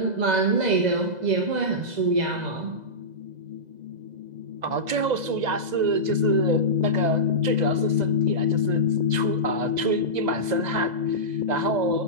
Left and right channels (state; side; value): late; left; 2.0 ms